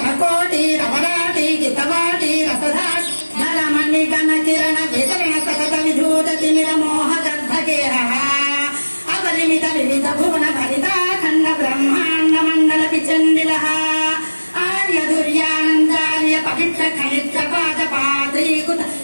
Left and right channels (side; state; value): both; inverted; correlation -1.00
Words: रवराटि गितवाटि रसधाट धरमणिगण किरण वितरण सतत विधूत तिमिर मोह गर्भगेहः अपरिमित विविध भुवन भरिता खण्ड ब्रह्माण्ड मण्डल विचण्डिलः आर्य दुर्यानन्दार्य पवित्र खनित्र पाद पाद्रीकुत